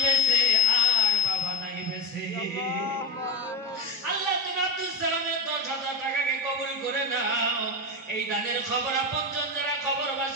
বেঁচে আর বাবা নাই বেঁচে। আল্লাহ তুমি আব্দুল সালামের 10,000 টাকাকে কবুল করে নাও। এই দানের খবর আপনজন যারা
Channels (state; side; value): normal; both; correlation 0.18